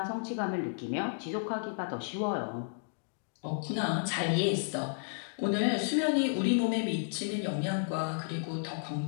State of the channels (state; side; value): silent; right; digital silence